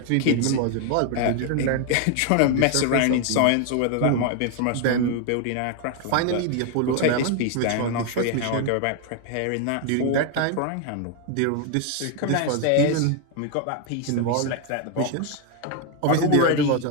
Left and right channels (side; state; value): both; different; correlation 0.01